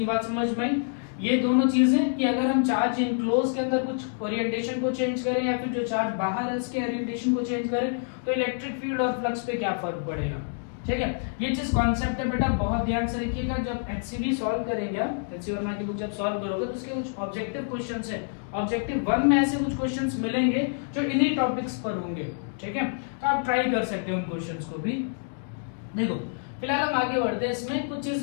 बात समझ में आई? ये दोनों चीजें कि अगर हम चार्ज इनक्लोज के अंदर कुछ ओरिएंटेशन को चेंज करें या फिर जो चार्ज बाहर है उसके ओरिएंटेशन को चेंज करें तो इलेक्ट्रिक फील्ड और फ्लक्स पे क्या फर्क पड़ेगा, ठीक है? ये चीज कॉन्सेप्ट है बेटा, बहुत ध्यान से रखिएगा। जब एचसीवी सॉल्व करेंगे आप, एचसी वर्मा की बुक जब सॉल्व करोगे तो उसके कुछ ऑब्जेक्टिव क्वेश्चंस है, ऑब्जेक्टिव 1 में ऐसे कुछ क्वेश्चंस मिलेंगे जो इन्हीं टॉपिक्स पर होंगे, ठीक है? तो आप ट्राई कर सकते हो उन क्वेश्चंस को भी। देखो फिलहाल हम आगे बढ़ते हैं, इसमें कुछ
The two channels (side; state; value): right; silent; digital silence